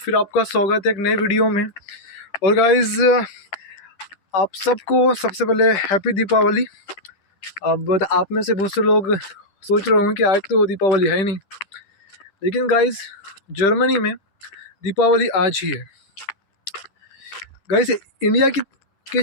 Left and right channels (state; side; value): late; right; 10 ms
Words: आपका स्वागत है एक नए वीडियो में। और गाइस, आप सबको सबसे पहले हैप्पी दीपावली। अब आप में से बहुत से लोग सोच रहे होंगे कि आज तो दीपावली है ही नहीं, लेकिन गाइस जर्मनी में दीपावली आज ही है। गाइस इंडिया के